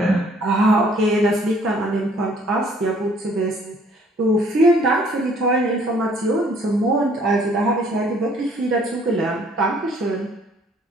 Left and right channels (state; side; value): normal; both; correlation 0.59